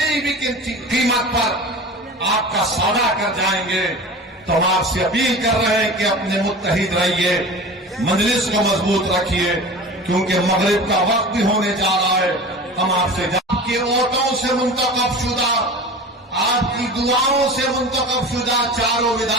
भी कीमत पर आपका सौदा कर जाएंगे। तो हम आपसे अपील कर रहे हैं कि अपने मुत्तहिद रहिए, मजलिस को मजबूत रखिए, क्योंकि मगरिब का वक्त भी होने जा रहा है। हम आपसे आपके वोटों से मुंतखब शुदा, आपकी दुआओं से मुंतखब शुदा चारों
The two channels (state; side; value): normal; both; correlation 0.35